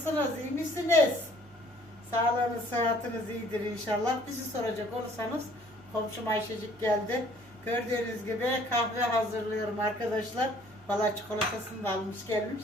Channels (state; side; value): noise; right; hum, 25 dB below the sound